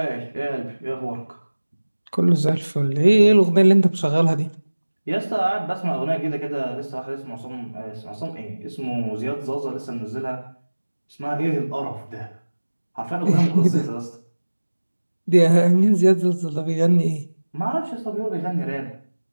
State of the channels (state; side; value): inverted; both; correlation -1.00